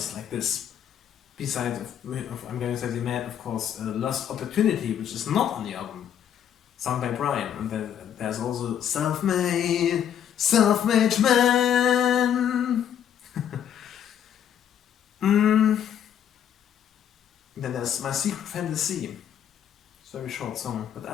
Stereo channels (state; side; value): quieter; right; 9.4 dB